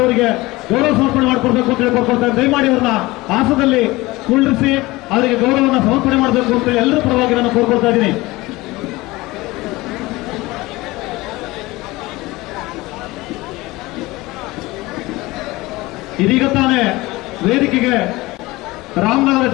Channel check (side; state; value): right; quieter; 20.5 dB